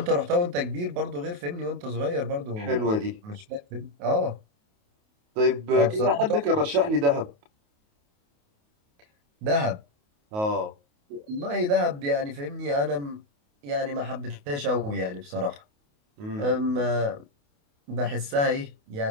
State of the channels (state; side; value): late; left; 28 ms